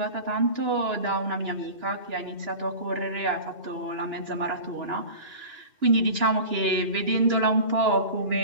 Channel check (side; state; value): left; late; 2.9 ms